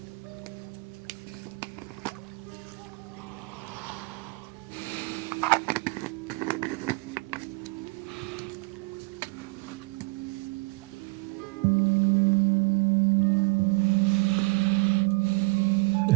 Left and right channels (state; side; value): quieter; left; 27.3 dB